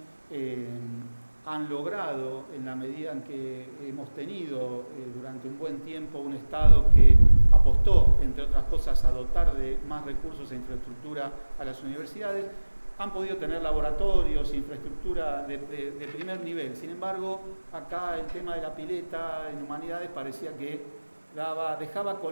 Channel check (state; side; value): inverted; both; correlation -1.00